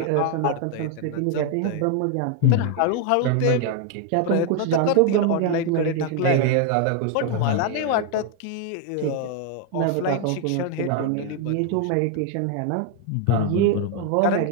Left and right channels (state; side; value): different; both; correlation 0.00